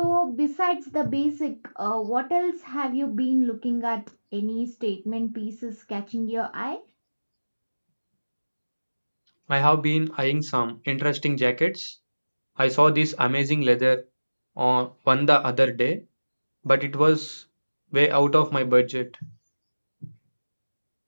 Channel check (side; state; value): both; inverted; correlation -1.00